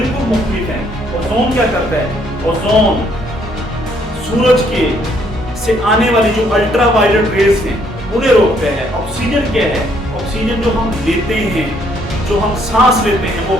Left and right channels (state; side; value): normal; both; correlation 0.67